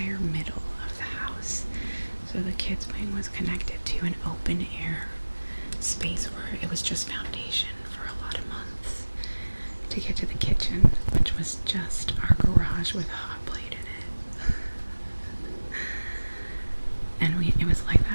middle of the house. So the kids' wing was connected to an open air space where it was just foundation for a lot of months to get to the kitchen, which was just our garage with a hot plate in it. And it was like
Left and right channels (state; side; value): inverted; both; correlation -1.00